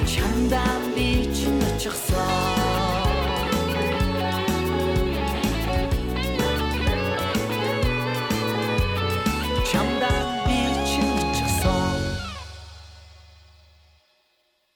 Чамдан би чимэрчихсэн.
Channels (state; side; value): identical; both; correlation 1.00